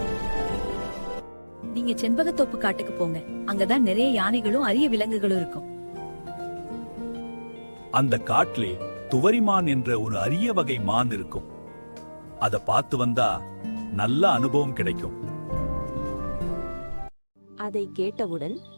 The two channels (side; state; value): both; inverted; correlation -1.00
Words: நீங்க செண்பகத்தோப்பு காட்டுக்கு போங்க. அங்கதான் நிறைய யானைகளும் அரிய விலங்குகளும் இருக்கும். அந்த காட்டிலே துவரிமான் என்ற ஒரு அரிய வகை மான் இருக்கும். அத பார்த்து வந்தா நல்ல அனுபவம் கிடைக்கும். அதை கேட்டவுடன்